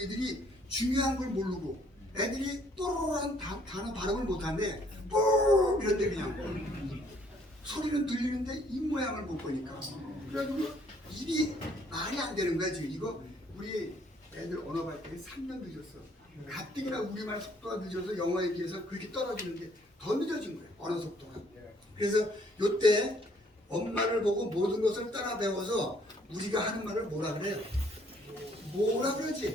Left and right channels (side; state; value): both; normal; correlation 0.63